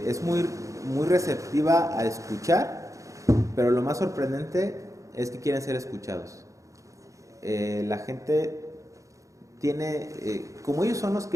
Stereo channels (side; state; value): left; late; 0.15 ms